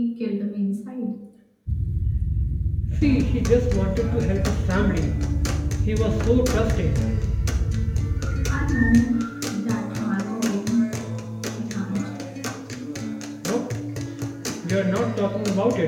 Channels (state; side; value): identical; both; correlation 1.00